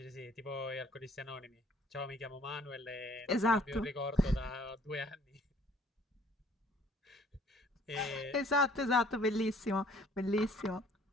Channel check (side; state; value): both; normal; correlation 0.57